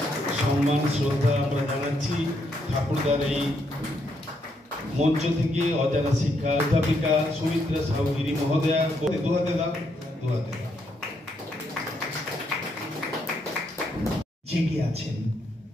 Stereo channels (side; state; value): both; normal; correlation 0.76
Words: সম্মান শ্রদ্ধা আমরা জানাচ্ছি ঠাকুরদার এই মঞ্চ থেকে অজানা শিক্ষা অধ্যাপিকা সুমিত্রা সাহুগিরি মহোদয়া জেগে আছেন।